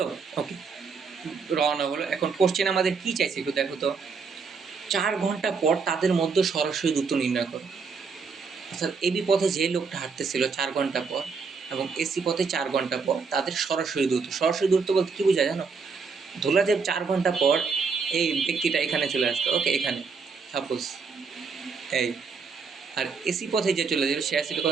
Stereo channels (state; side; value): quieter; left; 5.2 dB